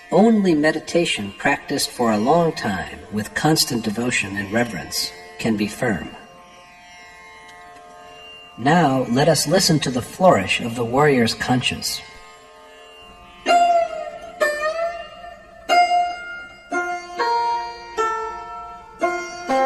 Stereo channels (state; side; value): identical; both; correlation 1.00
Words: only meditation practiced for a long time with constant devotion and reverence can be firm. Now let us listen to the flourish of the warrior's conches.